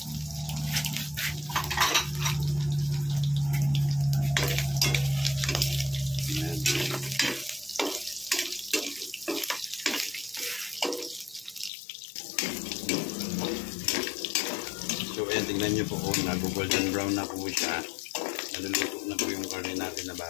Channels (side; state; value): right; drops out; at 11.7 s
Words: tingnan nyo po, oh, nag-golden brown na po siya. Naluluto na po yung karne natin na